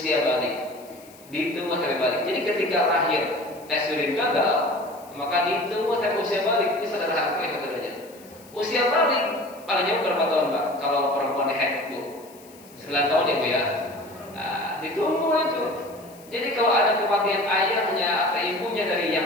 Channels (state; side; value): noise; left; hiss, 24 dB below the sound